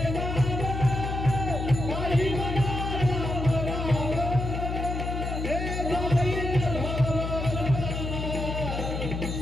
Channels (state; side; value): noise; left; hum, 4 dB below the sound